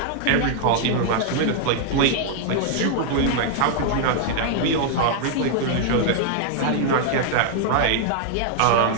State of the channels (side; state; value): both; different; correlation -0.01